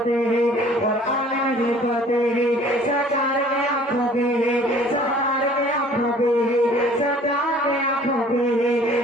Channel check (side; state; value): both; normal; correlation 0.52